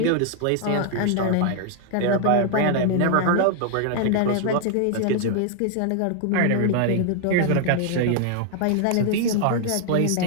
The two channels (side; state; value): both; different; correlation 0.00